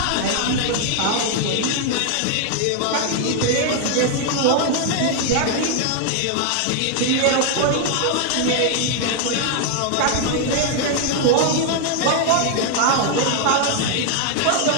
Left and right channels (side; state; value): both; different; correlation 0.00